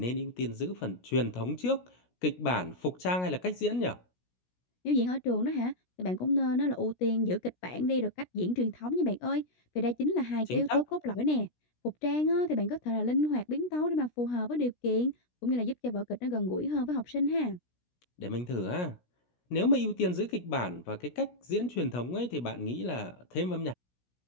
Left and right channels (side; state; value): right; late; 17 ms